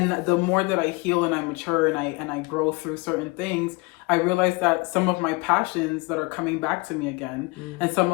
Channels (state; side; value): quieter; right; 26.3 dB